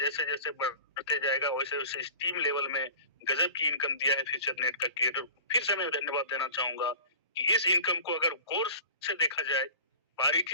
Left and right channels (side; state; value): both; inverted; correlation -0.41